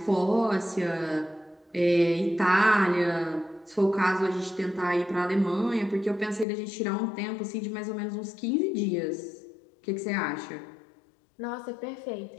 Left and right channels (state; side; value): drops out; right; at 6.5 s